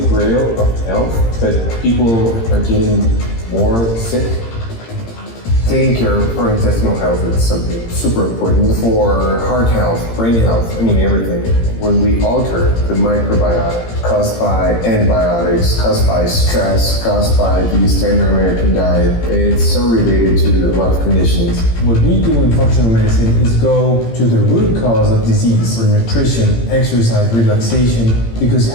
grail of health, but people are getting more sick. Taking care of our intestinal health is something super important for heart health, brain health, everything. When we alter the microbiota caused by antibiotics, caused by stress, caused by the standard American diet, it's so related to a lot of conditions. What we do in functional medicine is go to the root cause of disease for nutrition, exercise, relaxation, because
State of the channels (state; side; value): late; right; 18 ms